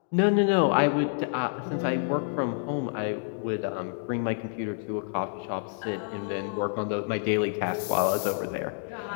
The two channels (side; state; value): right; silent; 58 dB below the other